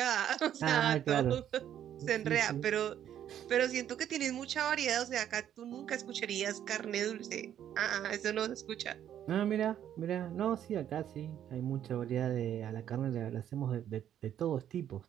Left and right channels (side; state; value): left; quieter; 10.4 dB